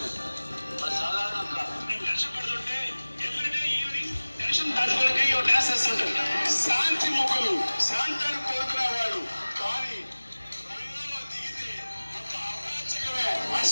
వాళ్ళు సాధారణంగా నేను కష్టపడుతుంటే ఎవ్రీడే ఈవినింగ్ టెన్షన్ తట్టుకోవడానికి డ్యాన్స్ వేస్తుంటారు. శాంతి ముఖులు, శాంతాన్ని కోరుకునేవాడు. కానీ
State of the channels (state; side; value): inverted; both; correlation -1.00